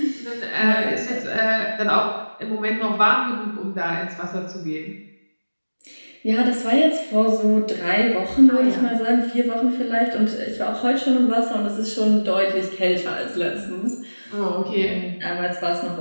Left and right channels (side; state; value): both; inverted; correlation -1.00